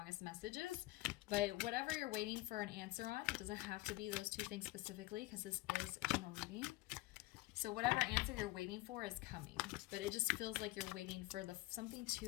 messages. But whatever you're waiting for an answer on, it doesn't have to be those 2 things specifically, because this is a general reading. So whatever answer you're waiting for is coming, but it just feels like you're waiting for something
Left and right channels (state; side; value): quieter; right; 19.4 dB